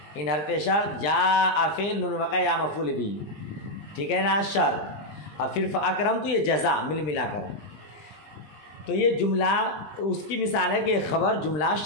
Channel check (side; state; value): right; late; 20 ms